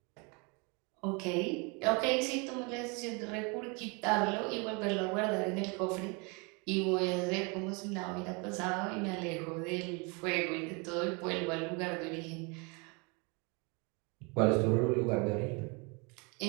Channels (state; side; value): quieter; left; 31.0 dB